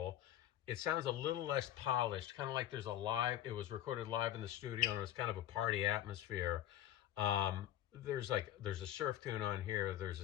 It sounds a little less polished, kind of like there's a live, it was recorded live in the studio and it's kind of a party atmosphere. There's a surf tune on here, there's a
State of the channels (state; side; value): quieter; right; 12.4 dB